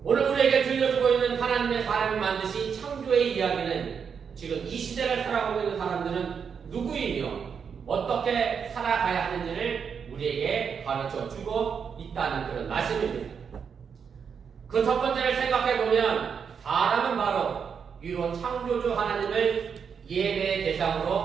오늘 우리에게 들려주고 있는 하나님의 사람을 만드신 창조의 이야기는 지금 이 시대를 살아가고 있는 사람들은 누구이며 어떻게 살아가야 하는지를 우리에게 가르쳐 주고 있다는 그런 말씀입니다. 그 첫 번째를 생각해 보면 사람은 바로 위로 창조주 하나님을 예배의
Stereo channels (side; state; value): left; quieter; 6.7 dB